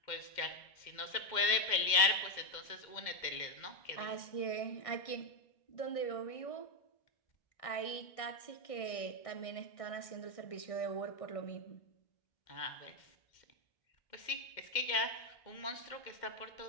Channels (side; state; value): right; late; 2.1 ms